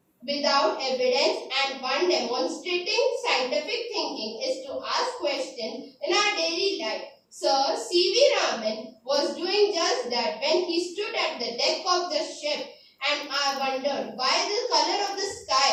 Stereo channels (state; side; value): identical; both; correlation 1.00